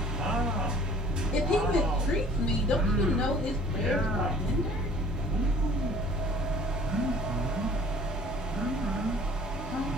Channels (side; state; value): both; normal; correlation 0.52